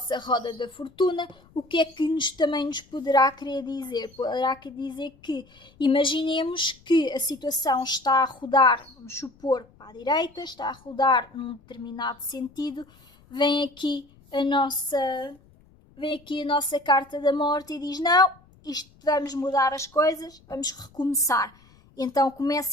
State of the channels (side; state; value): left; noise; rumble, 28 dB below the sound